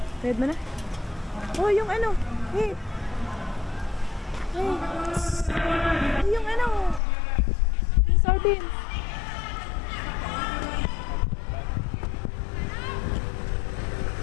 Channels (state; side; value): drops out; right; at 7.0 s